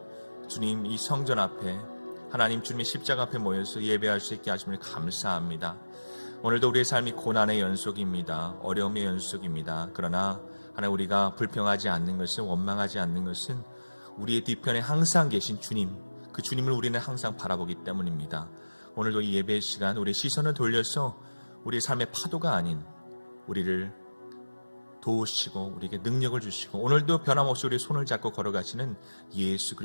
주님 이 성전 앞에 하나님 주님의 십자가 앞에 모여서 예배할 수 있게 하심을 감사합니다. 오늘도 우리의 삶이 고난의 연속입니다. 어려움의 연속입니다. 그러나 하나님 우리가 불평하지 않는 것은, 원망하지 않는 것은 우리의 뒤편에 항상 계신 주님, 그 주님을 우리는 항상 바라보기 때문입니다. 오늘도 이 예배의 시간 우리의 시선을 돌려서 우리의 삶의 파도가 아닌 우리를 도우시고 우리에게 능력을 주시고 오늘도 변함없이 우리의 손을 잡고 걸어가시는 예수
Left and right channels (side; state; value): both; inverted; correlation -1.00